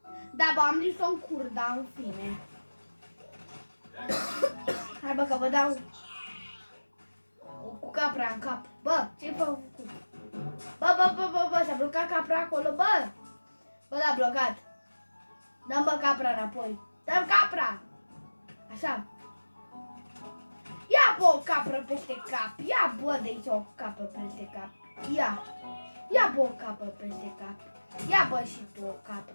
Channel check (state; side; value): inverted; both; correlation -1.00